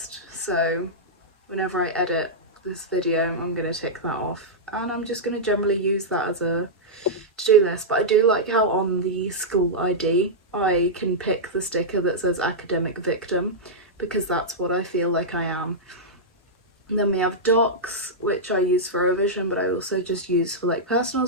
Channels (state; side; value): normal; both; correlation -0.09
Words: so whenever I edit this video I'm gonna tick that off, and I'm just gonna generally use that as a to-do list. But I do like how on the school ID I can pick the sticker that says academic victim, because that's what I feel like I am. And then we have Docs, which I use for revision, but I also just use for like personal